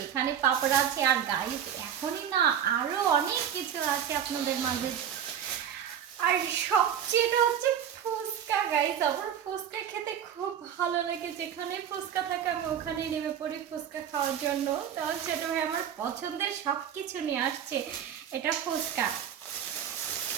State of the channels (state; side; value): quieter; left; 9.0 dB